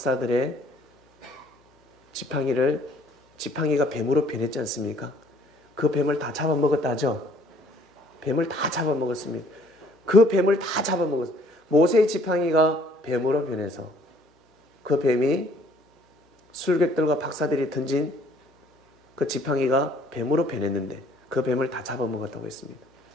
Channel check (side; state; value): both; normal; correlation 0.60